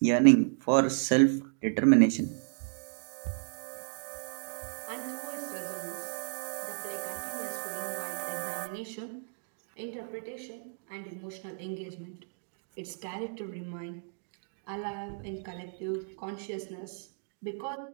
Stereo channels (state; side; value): silent; left; digital silence